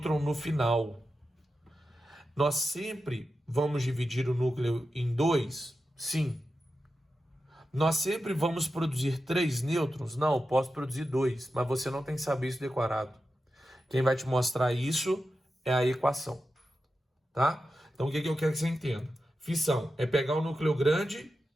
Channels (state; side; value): normal; both; correlation 0.91